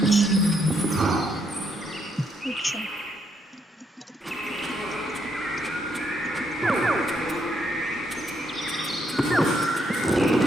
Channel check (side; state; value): both; normal; correlation 0.75